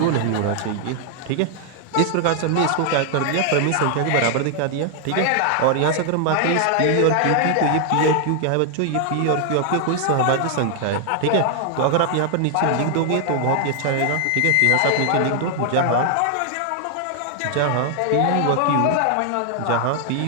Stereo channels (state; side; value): different; both; correlation 0.00